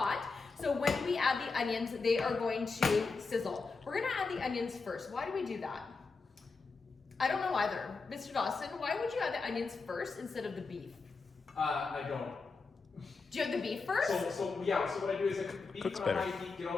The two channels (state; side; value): quieter; right; 4.4 dB